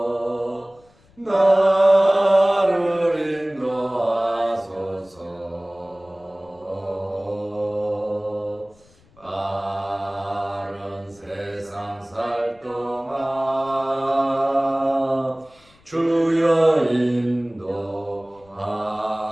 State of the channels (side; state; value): left; noise; rumble, 30 dB below the sound